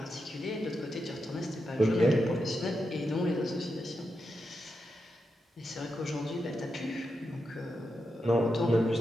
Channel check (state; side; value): normal; both; correlation 0.87